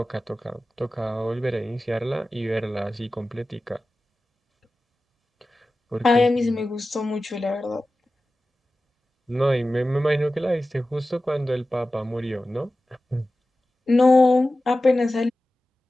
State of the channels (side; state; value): both; normal; correlation 0.95